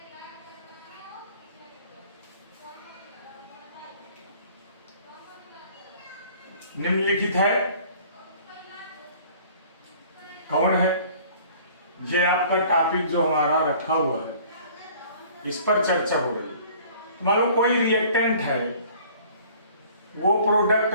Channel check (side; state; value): both; inverted; correlation -0.51